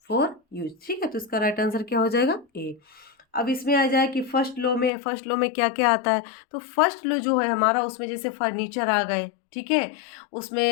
फॉर यूज, ठीक है। तो इसका राइट आंसर क्या हो जाएगा, ए। अब इसमें आ जाए कि फर्स्ट लो में क्या क्या आता है, तो फर्स्ट लो जो है हमारा, उसमें जैसे फर्नीचर आ गए, ठीक है,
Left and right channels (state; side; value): drops out; right; at 4.9 s